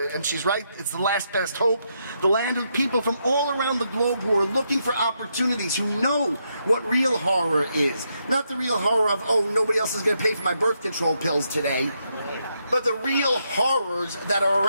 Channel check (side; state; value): both; inverted; correlation -0.80